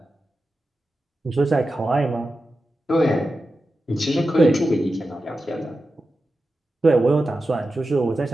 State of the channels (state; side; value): normal; both; correlation 0.92